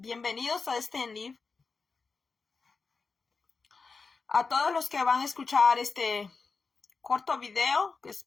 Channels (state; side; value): quieter; right; 4.6 dB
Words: a este en live. A todos los que van a escuchar este corto video, que